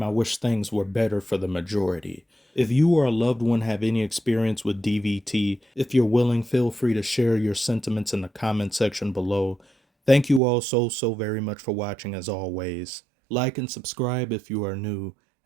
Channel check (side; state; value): left; drops out; at 10.4 s